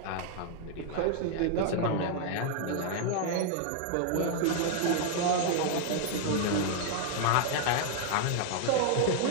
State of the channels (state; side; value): different; both; correlation 0.00